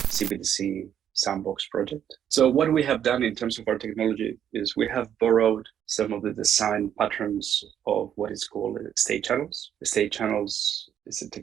sandbox project. So what we have done in terms of our technology is we have borrowed some of the design patterns of what is called state channels. The state channels is a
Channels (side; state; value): left; quieter; 9.6 dB